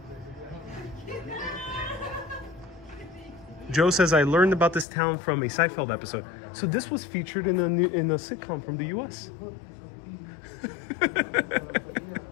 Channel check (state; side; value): drops out; right; at 4.9 s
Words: Joe says, I learned about this town from a Seinfeld episode. So this was featured in a sitcom from the US.